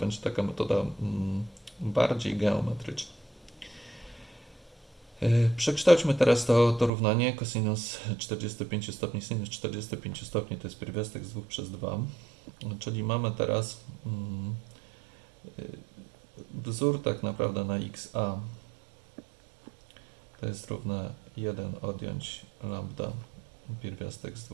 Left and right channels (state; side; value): drops out; left; at 6.9 s